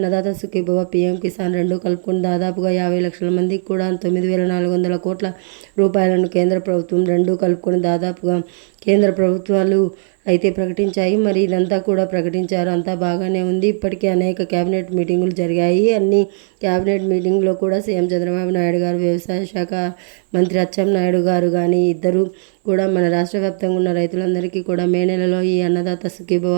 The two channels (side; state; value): left; silent; 66 dB below the other